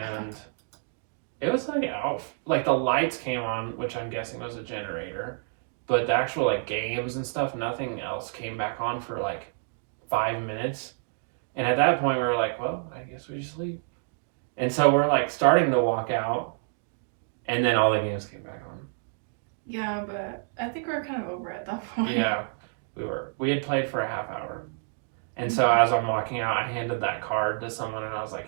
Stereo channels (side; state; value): left; silent; digital silence